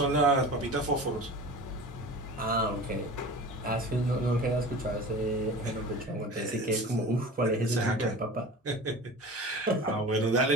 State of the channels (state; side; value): normal; both; correlation 0.36